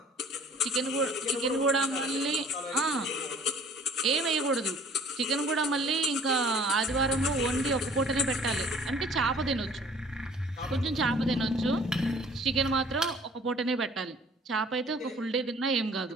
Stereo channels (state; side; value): normal; both; correlation 0.53